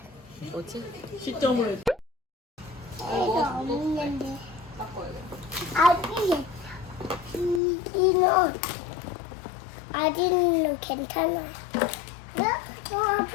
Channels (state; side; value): drops out; right; at 7.6 s